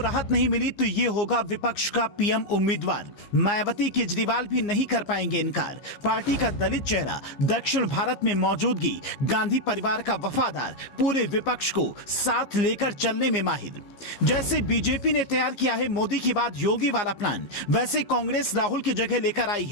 नहीं मिली तो ये होगा विपक्ष का पीएम उम्मीदवार। मायावती केजरीवाल भी नहीं कर पाएंगे इनकार। पार्टी का दलित चेहरा, दक्षिण भारत में मौजूदगी, गांधी परिवार का वफादार, पूरे विपक्ष को साथ लेकर चलने में माहिर। जैसे बीजेपी ने तैयार किया है मोदी की बाद योगी वाला प्लान, वैसे कांग्रेस राहुल की जगह लेकर आई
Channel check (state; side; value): late; right; 15 ms